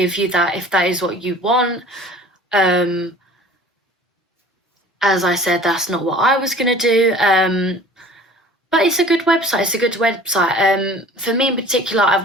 you that if that is what you want. As I said, that's not what I was going to do, but it's a good website. For me in particular,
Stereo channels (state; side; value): normal; both; correlation 0.46